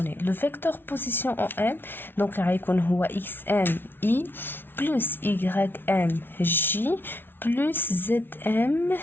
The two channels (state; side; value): late; right; 0.10 ms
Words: لو فيكتور بوزيسيون او ام دونك غيكون هو اكس ام اي بلس y ام جي بلس زد ام